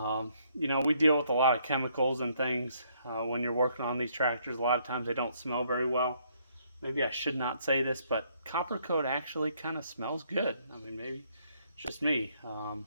deal with a lot of chemicals and things when you're working on these tractors. A lot of times they don't smell very well. Maybe I should not say this, but copper coat actually kind of smells good. I mean, maybe it's just me.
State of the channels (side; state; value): both; inverted; correlation -0.69